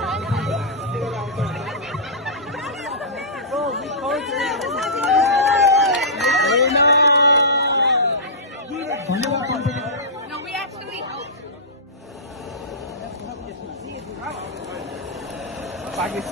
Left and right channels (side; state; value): both; normal; correlation -0.17